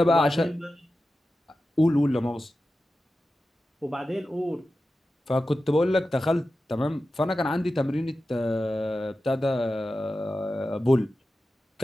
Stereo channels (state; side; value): normal; both; correlation 0.93